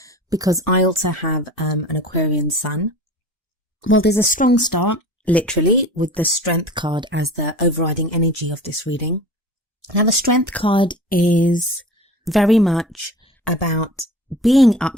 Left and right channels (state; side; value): normal; both; correlation 0.38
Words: because I also have an Aquarian sun. Well, there's a strong start, literally, with the Strength card as the overriding energy of this reading. Now the Strength card is very much about being